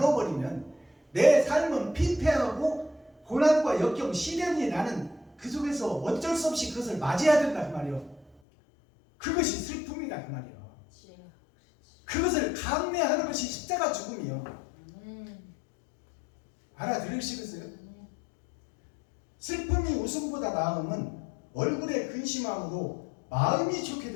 내 삶은 피폐하고 고난과 역경, 시련이 나는 그 속에서 어쩔 수 없이 그것을 맞이해야 된다 그 말이요. 그것이 슬픔이다 그 말이요. 주여. 그것을 감내하는 것이 십자가 죽음이요. 아멘. 알아들으시겠어요? 아멘. 슬픔이 웃음보다 나음은 얼굴에 근심함으로 마음이 좋게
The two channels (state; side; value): drops out; right; at 8.3 s